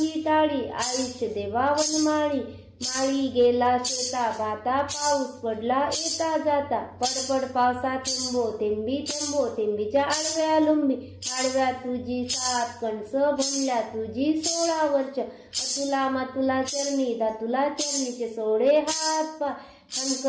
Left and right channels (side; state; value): both; identical; correlation 1.00